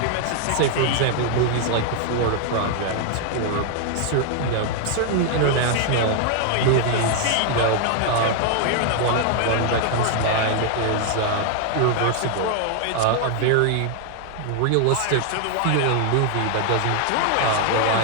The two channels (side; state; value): both; different; correlation 0.00